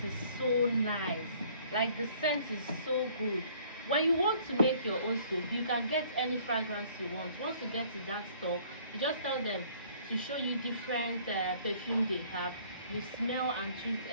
is so nice. Like, the scent is so good. When you want to make your own soap, you can get any fragrance you want. Once you get to that store, you just tell them to show you different perfume they have. You smell and choose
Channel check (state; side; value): inverted; both; correlation -0.58